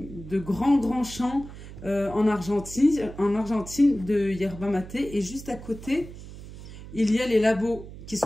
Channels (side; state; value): right; noise; hum, 14 dB below the sound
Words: grands champs en Argentine de yerba maté. Et juste à côté, il y a les labos qui